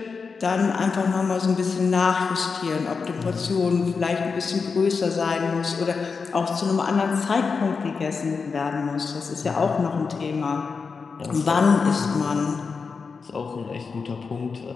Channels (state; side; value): quieter; right; 5.1 dB